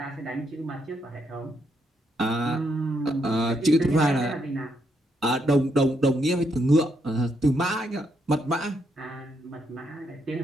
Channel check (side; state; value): both; normal; correlation 0.77